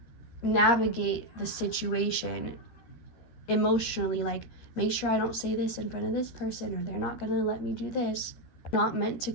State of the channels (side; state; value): right; late; 13 ms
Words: navigate the situation emotionally, like make sure I don't say this in front of this person, or they're not going to let me do this. Not meant to